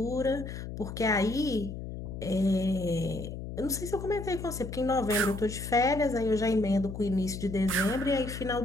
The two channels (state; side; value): noise; left; hum, 8 dB below the sound